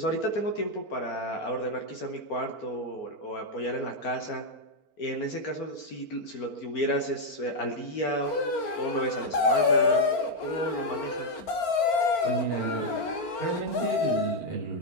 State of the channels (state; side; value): late; right; 4.4 ms